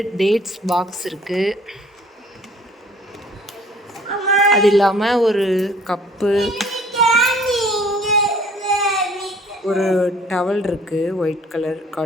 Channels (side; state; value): both; normal; correlation 0.55